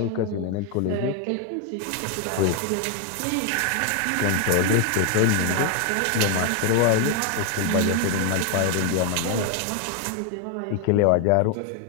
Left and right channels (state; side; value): different; both; correlation 0.00